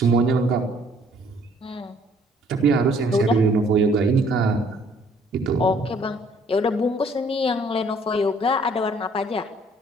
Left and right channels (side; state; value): both; normal; correlation 0.60